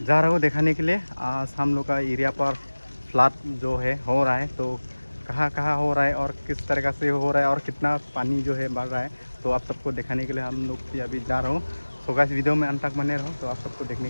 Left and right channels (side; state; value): both; inverted; correlation -1.00